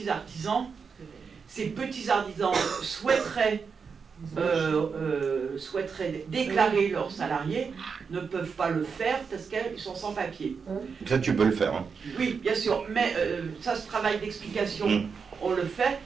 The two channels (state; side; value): quieter; left; 5.7 dB